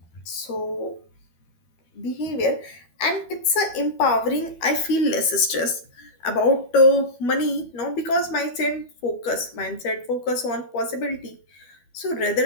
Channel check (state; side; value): late; right; 12 ms